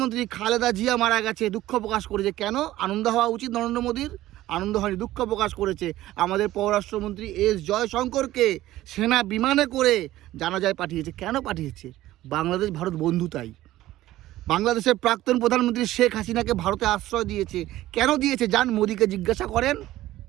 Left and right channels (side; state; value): left; quieter; 15.3 dB